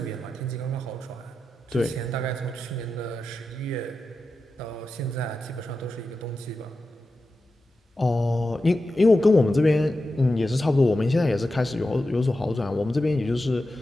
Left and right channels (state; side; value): normal; both; correlation 0.91